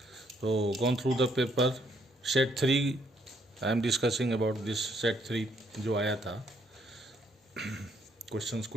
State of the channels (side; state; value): both; normal; correlation 0.70